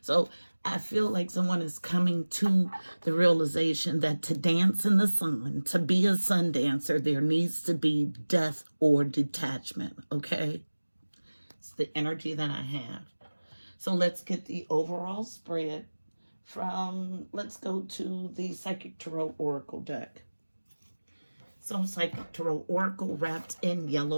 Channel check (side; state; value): both; inverted; correlation -1.00